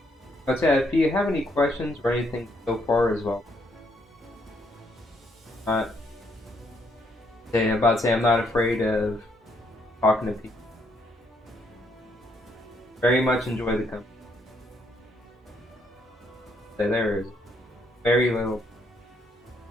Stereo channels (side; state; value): both; normal; correlation 0.72